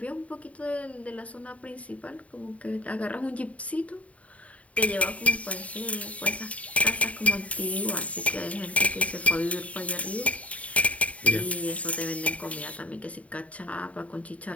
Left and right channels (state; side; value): late; right; 0.067 ms